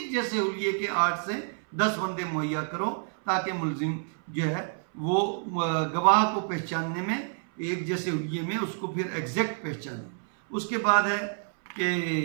जैसे हुलिये के 8 से 10 बंदे मुहैया करो ताकि मुलजिम जो है वो गवाह को पहचानने में एक जैसे हुलिये में उसको फिर एग्जैक्ट पहचाने। उसके बाद है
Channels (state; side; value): silent; left; 59 dB below the other